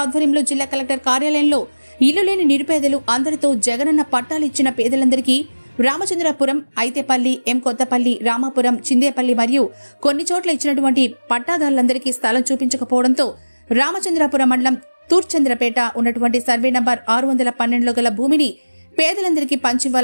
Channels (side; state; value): both; inverted; correlation -1.00